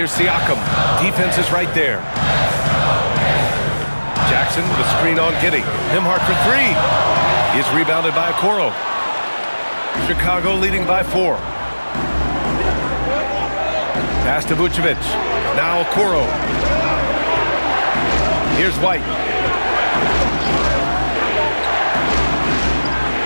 Siakam. Defense is right there. Jackson with a screen on Giddey. Nembhard for 3. He is rebounded by Okoro. Chicago leading by 4. Pass to Vucevic. Now Okoro. Here's White.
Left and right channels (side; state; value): both; inverted; correlation -1.00